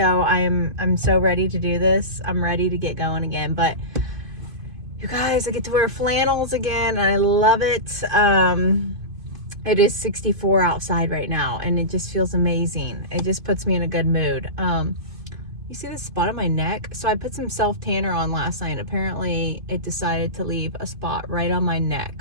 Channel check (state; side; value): late; left; 2.5 ms